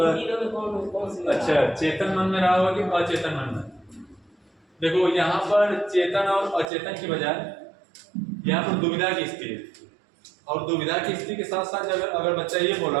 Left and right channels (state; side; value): drops out; left; at 6.7 s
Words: तीनों में कौन सी, अच्छा, चेतन मन में रहा होगा कि अचेतन मन में। देखो यहाँ पर चेतन और अचेतन की बजाय यहाँ पर दुविधा की स्थिति है, और दुविधा की स्थिति के साथ साथ अगर बच्चा ये